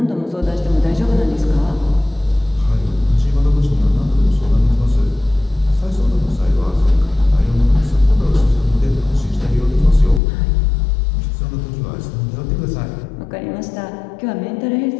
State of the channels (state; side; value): drops out; right; at 10.2 s